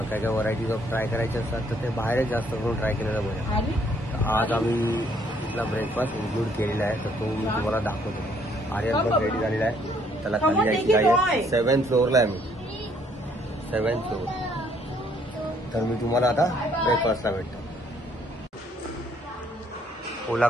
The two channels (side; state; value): both; normal; correlation 0.65